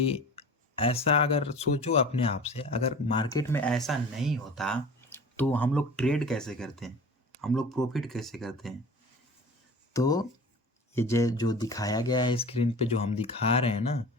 ऐसा अगर सोचो अपने आप से, अगर मार्केट में ऐसा नहीं होता तो हम लोग ट्रेड कैसे करते हैं, हम लोग प्रॉफिट कैसे करते हैं? तो ये जो दिखाया गया है स्क्रीन पे, जो हम दिखा रहे हैं ना,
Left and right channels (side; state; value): both; normal; correlation 0.39